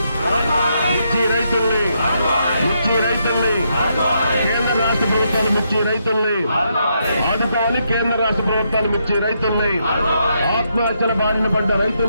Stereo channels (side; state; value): both; inverted; correlation -0.78